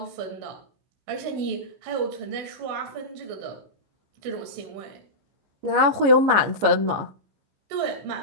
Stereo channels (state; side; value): late; left; 15 ms